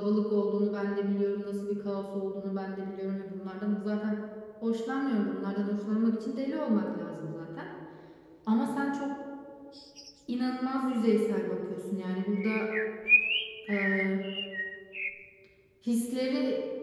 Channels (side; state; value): both; identical; correlation 1.00